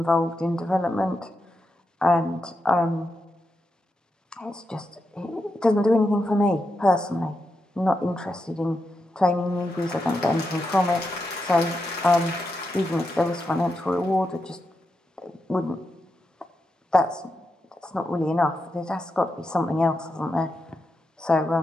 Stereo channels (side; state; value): both; normal; correlation 0.86